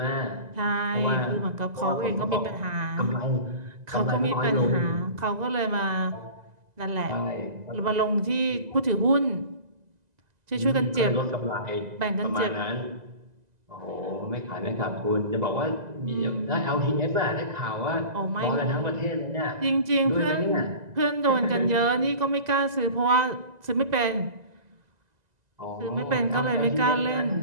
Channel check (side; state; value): left; late; 2.0 ms